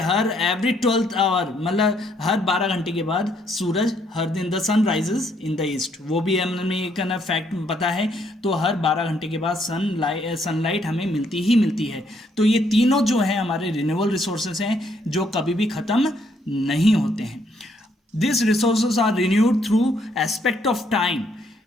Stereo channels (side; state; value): both; normal; correlation 0.70